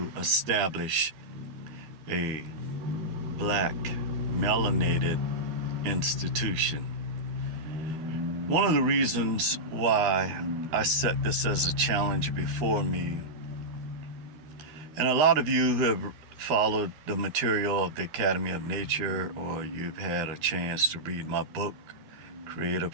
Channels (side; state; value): left; late; 13 ms